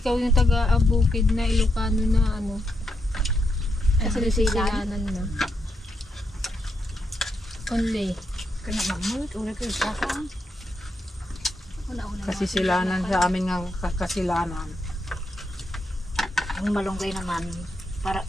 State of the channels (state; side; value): normal; both; correlation 0.81